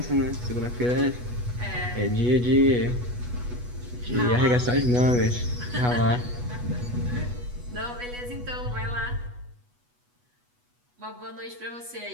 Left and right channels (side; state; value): left; late; 8.2 ms